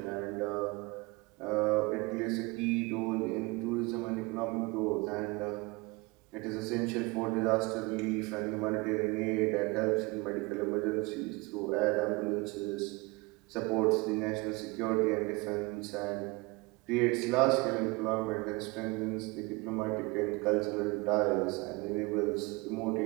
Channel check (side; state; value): left; quieter; 25.1 dB